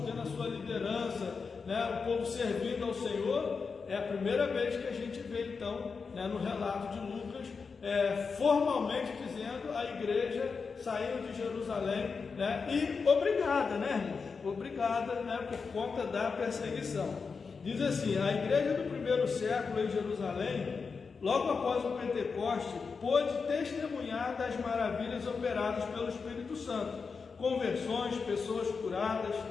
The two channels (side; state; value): right; quieter; 5.1 dB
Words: tendo a sua liderança, né, o povo servindo ao Senhor, é a primeira vez que a gente vê então, né, no relato de Lucas, formalmente dizendo a igreja saindo de Jerusalém, né, e obrigada, né, irmãos? Obrigada, né, por conta da perseguição. Diz assim: a igreja do primeiro século em Jerusalém, logo após o Pentecoste, pôde testemunhar das maravilhas operadas pelo Espírito Santo, conversões, pessoas curadas,